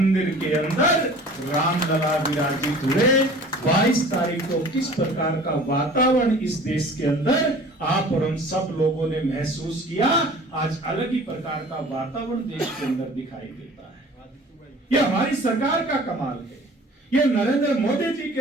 के अंदर रामलला विराजित हुए। 22 तारीख को किस प्रकार का वातावरण इस देश के अंदर आप और हम सब लोगों ने महसूस किया, आज अलग ही प्रकार का वातावरण देश के अंदर दिखाई देता है। यह हमारी सरकार का कमाल है, यह नरेंद्र मोदी जी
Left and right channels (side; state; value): both; normal; correlation 0.46